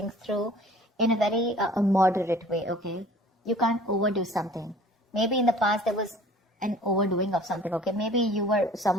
in a very moderate way, okay? You can't overdo something. Maybe in the past there was an overdoing of something, okay? Maybe you were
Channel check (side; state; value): both; normal; correlation 0.49